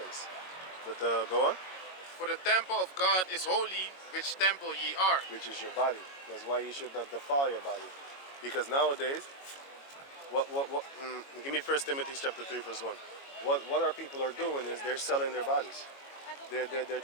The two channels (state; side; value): late; right; 22 ms